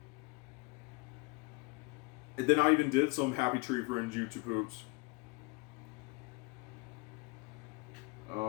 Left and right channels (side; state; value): right; quieter; 27.2 dB